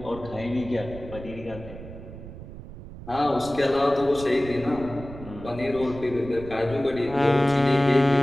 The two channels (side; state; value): right; noise; rumble, 14 dB below the sound